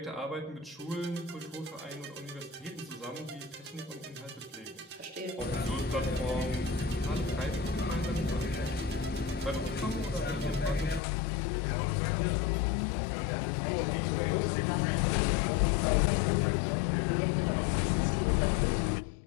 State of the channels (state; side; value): drops out; right; at 11.0 s